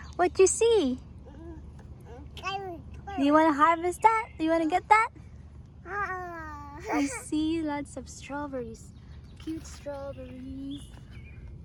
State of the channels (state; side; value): identical; both; correlation 1.00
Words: What you see? Do you want to harvest that? Do you want to get that? I see lots of strawberries. Cute strawberries.